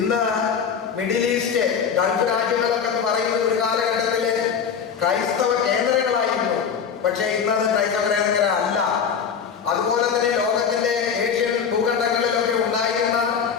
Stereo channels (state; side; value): quieter; right; 6.9 dB